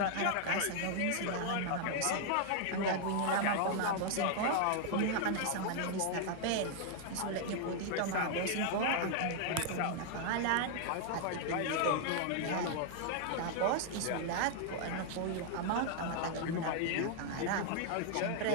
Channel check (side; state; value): both; different; correlation 0.00